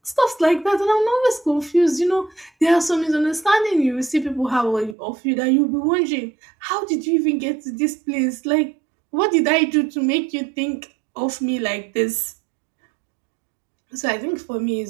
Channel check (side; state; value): left; drops out; at 5.0 s